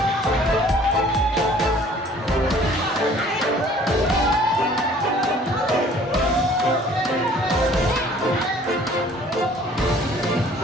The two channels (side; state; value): both; normal; correlation 0.54